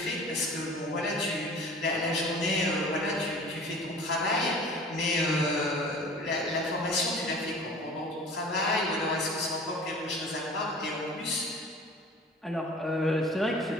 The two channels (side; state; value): both; normal; correlation 0.43